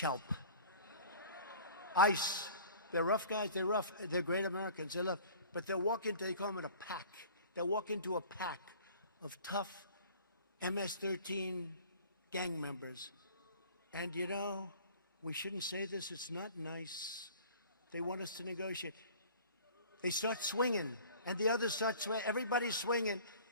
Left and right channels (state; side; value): inverted; both; correlation -0.46